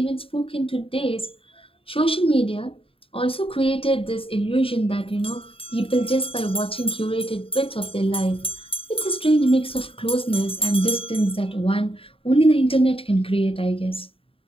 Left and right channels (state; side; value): late; right; 0.27 ms